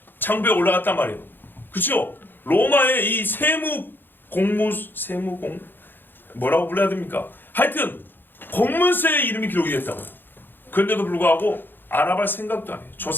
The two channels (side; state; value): right; late; 0.096 ms